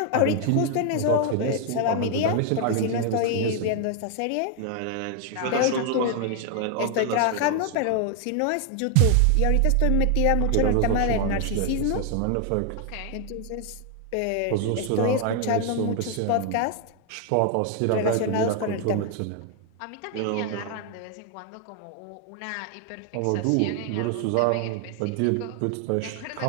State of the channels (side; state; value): both; different; correlation 0.00